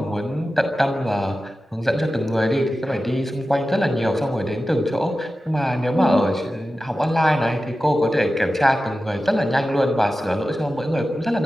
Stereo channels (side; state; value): both; normal; correlation 0.94